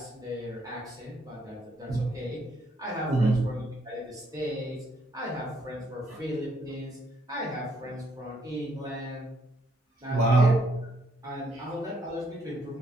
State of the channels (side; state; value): both; normal; correlation 0.71